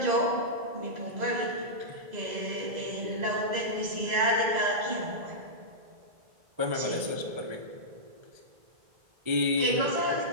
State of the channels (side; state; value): left; late; 1.3 ms